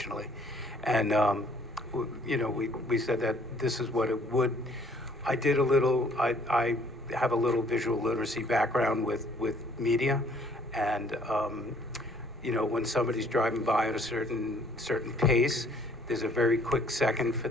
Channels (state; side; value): normal; both; correlation 0.60